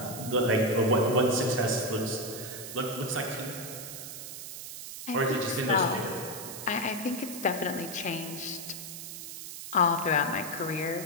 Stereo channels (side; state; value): right; noise; hiss, 10 dB below the sound